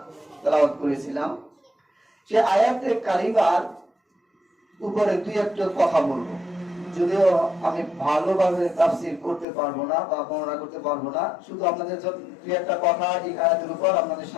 তেলাওয়াত করেছিলাম। সে আয়াতে কারিমার উপরে দুই একটা কথা বলবো, যদিও আমি ভালোভাবে তাফসীর করতে পারবো না বা বর্ণনা করতে পারবো না, শুধু আপনাদের দুই একটা কথা এই আয়াতের উপর আপনাদের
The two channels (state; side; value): drops out; right; at 9.5 s